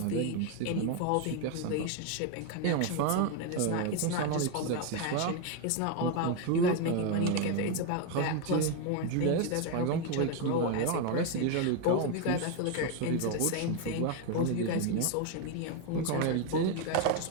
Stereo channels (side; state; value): both; different; correlation 0.01